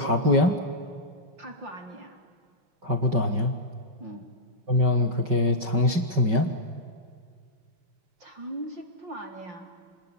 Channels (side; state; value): left; late; 5.3 ms